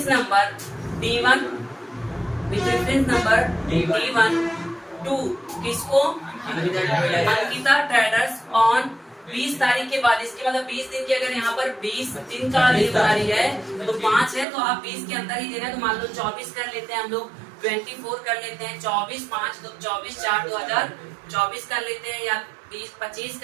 number D1, with reference number D1 to किसको, अंकिता ट्रेडर्स ऑन 20 तारीख के बाद। इसके मतलब 20 दिन की, अगर यहाँ पर 20 दिन का उधारी है तो 5 है, तो आप 20 के अंदर ही देना है। तो मान लो 24 कर लेते हैं हम लोग, 24 कर लेते हैं, 24 5 तो 24/4/2024 कर लेते हैं, या 20-25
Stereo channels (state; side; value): drops out; left; at 14.5 s